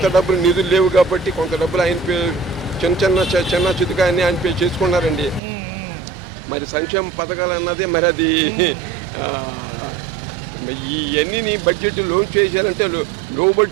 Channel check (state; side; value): drops out; left; at 5.4 s